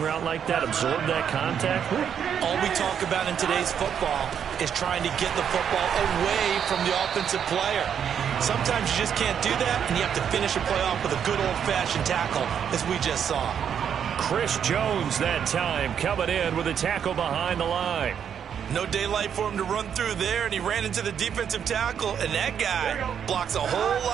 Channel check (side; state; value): left; quieter; 8.2 dB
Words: route like that, absorb that contact. All we talk about in today's football is trying to get the football away from the offensive player. Sometimes you just can't do that, and you have to finish a play off with a good old-fashioned tackle, as we just saw. Chris Jones that time coming in with a tackle behind the line. No daylight for him to run through there, and he ran into the defensive tackle, and that guy blocks a whole